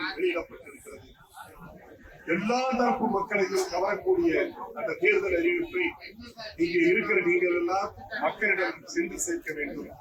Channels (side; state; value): both; identical; correlation 1.00